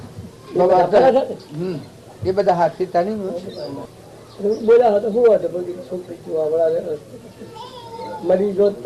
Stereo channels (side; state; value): both; identical; correlation 1.00